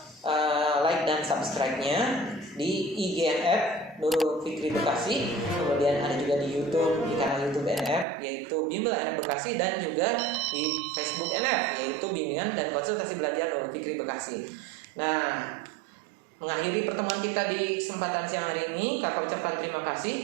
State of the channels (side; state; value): left; drops out; at 8.1 s